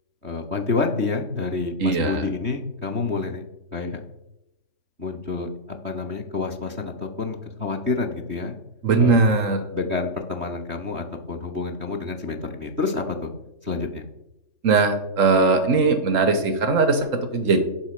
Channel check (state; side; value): late; left; 3.8 ms